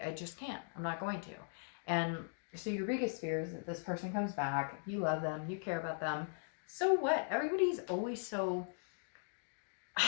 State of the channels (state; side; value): silent; right; digital silence